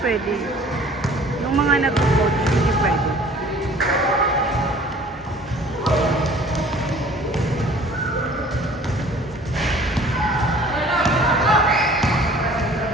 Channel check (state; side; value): normal; both; correlation 0.50